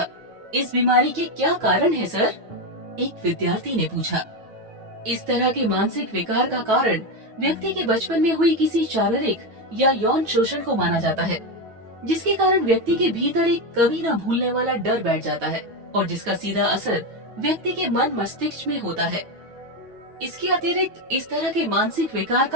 इस बीमारी के क्या कारण है सर? एक विद्यार्थी ने पूछा। इस तरह के मानसिक विकार का कारण व्यक्ति के बचपन में हुई किसी शारीरिक या यौन शोषण को माना जाता है, जिसके कारण व्यक्ति के भीतर एक कभी न भूलने वाला डर बैठ जाता है और जिसका सीधा असर व्यक्ति के मन मस्तिष्क में होता है। इसके अतिरिक्त इस तरह के मानसिक विकार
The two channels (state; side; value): late; left; 9.2 ms